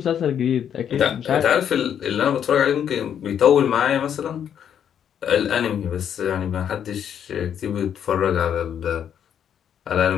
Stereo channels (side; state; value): right; quieter; 8.9 dB